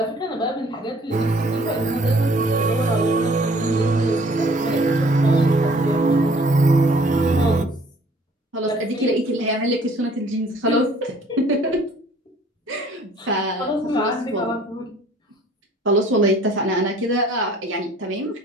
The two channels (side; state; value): both; normal; correlation 0.55